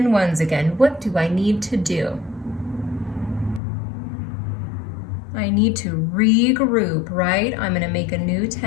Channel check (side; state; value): right; drops out; at 3.6 s